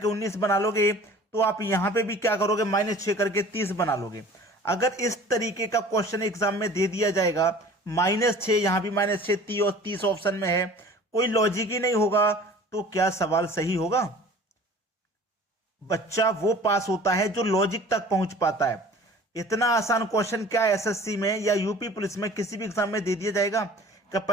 19 बना लोगे तो आप यहां पे भी क्या करोगे, -6 करके 30 बना लोगे। अगर इस तरीके का क्वेश्चन एग्जाम में दे दिया जाएगा, -6 यहां भी -6 30 और 30 ऑप्शन में है, कोई लॉजिक ही नहीं होगा, तो क्या सवाल सही होगा? बच्चा वो पास होता है जो लॉजिक तक पहुंच पाता है। इतना आसान क्वेश्चन क्या एसएससी में या यूपी पुलिस में किसी भी एग्जाम में दे दिया जाएगा कि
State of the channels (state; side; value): normal; both; correlation 0.46